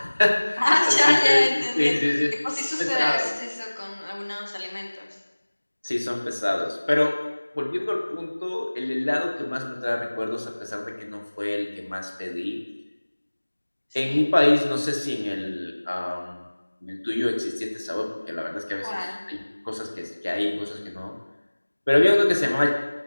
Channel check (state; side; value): inverted; both; correlation -1.00